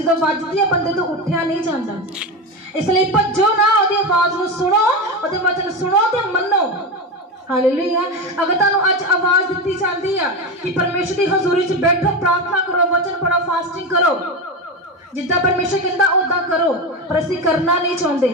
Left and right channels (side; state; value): both; normal; correlation 0.18